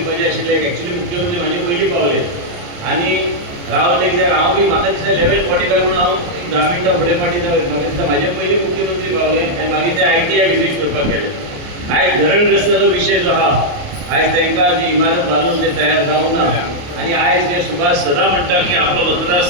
आशिल्ले, एक्चुअली मुख्यमंत्री म्हाजे पयलीं पावले आनी रावले कित्याक हांव बी म्हाका दिसता लेवल 45 म्हणून हांव 10 मिनटां फुडें फाटीं म्हाका दिसता म्हाजे पयलीं मुख्यमंत्री पावले आनी मागीर ते ITI विजीट करपाक गेले. आयज धरणग्रस्ताचो विशय जो आहा आयज तांकां जी इमारत बांदून ते तयार जावंक ना. आनी आयज जे सुभाष सदां म्हणटा की आपलो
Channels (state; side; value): late; left; 28 ms